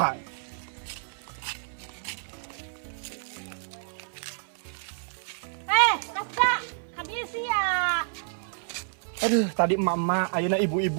Kasta, habis ya. Aduh, tadi emak-emak, ayeuna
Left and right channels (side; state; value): left; silent; 59 dB below the other